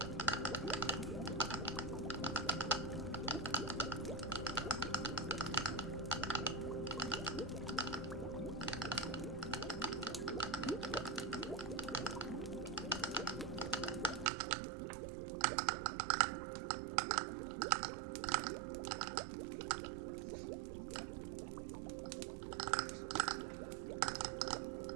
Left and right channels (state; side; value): drops out; left; at 14.3 s